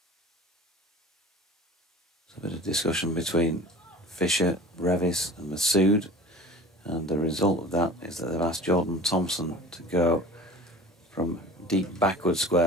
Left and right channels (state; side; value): normal; both; correlation 0.40